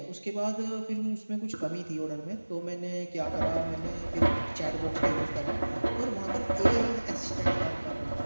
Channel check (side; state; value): both; inverted; correlation -1.00